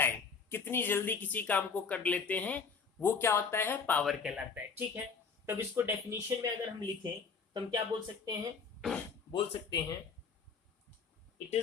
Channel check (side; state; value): right; quieter; 5.4 dB